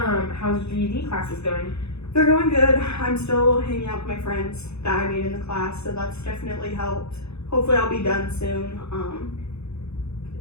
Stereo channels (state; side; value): late; right; 0.80 ms